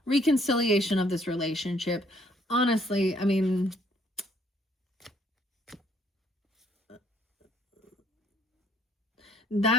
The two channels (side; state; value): both; normal; correlation 0.65